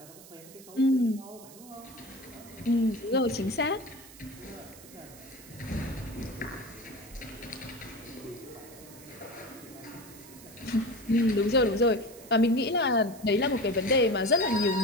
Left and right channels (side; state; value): right; noise; hiss, 19 dB below the sound